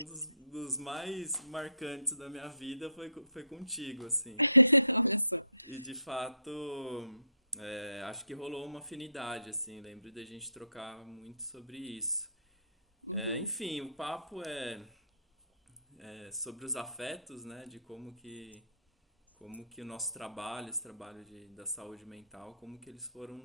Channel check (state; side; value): inverted; both; correlation -0.71